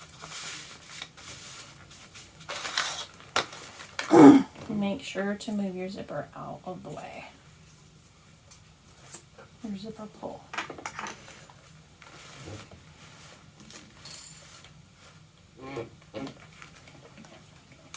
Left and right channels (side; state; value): both; identical; correlation 1.00